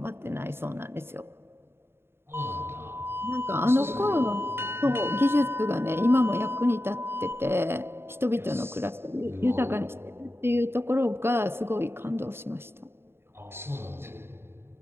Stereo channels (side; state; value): left; late; 0.11 ms